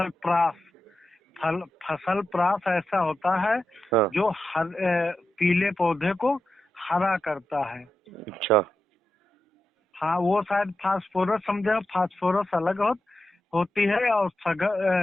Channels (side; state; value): both; normal; correlation 0.89